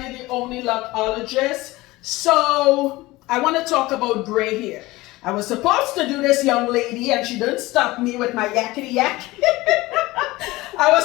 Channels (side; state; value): right; quieter; 19.8 dB